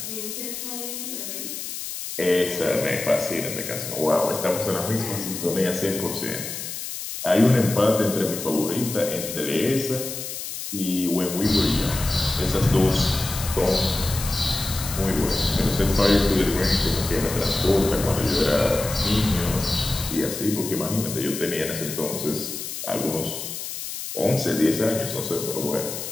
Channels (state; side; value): noise; left; hiss, 7 dB below the sound